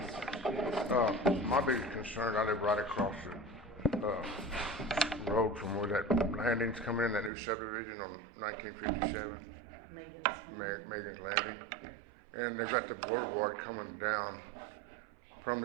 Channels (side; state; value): left; drops out; at 7.3 s